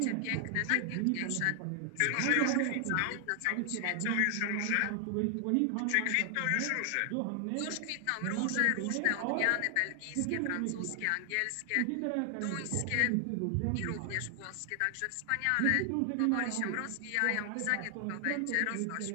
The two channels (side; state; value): both; different; correlation 0.00